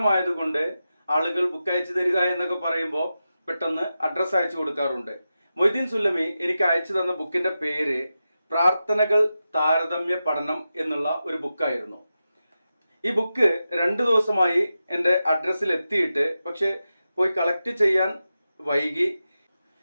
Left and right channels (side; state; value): both; inverted; correlation -0.91